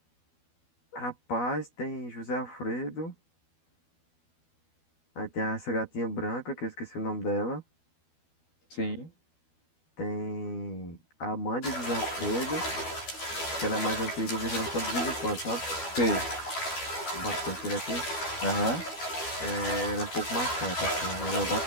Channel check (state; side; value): late; right; 12 ms